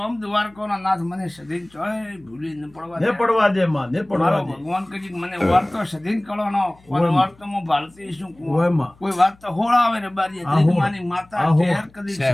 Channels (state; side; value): noise; left; hum, 28 dB below the sound